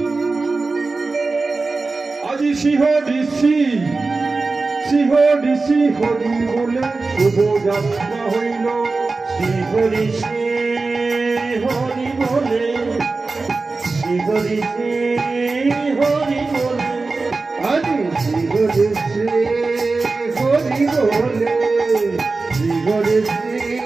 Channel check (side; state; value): left; quieter; 3.8 dB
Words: আজি সিংহ ঋষি হরি বলে শুভ যাত্রা হইল। সিংহ ঋষি হরি বলে সিংহ ঋষি হরি বলে আজি সিংহ ঋষি হরি বলে সিংহ ঋষি